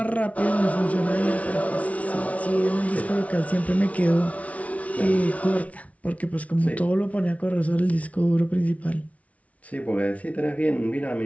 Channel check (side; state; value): right; late; 0.067 ms